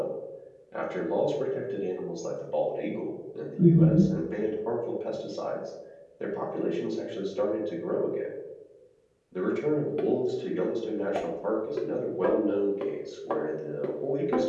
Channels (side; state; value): both; identical; correlation 1.00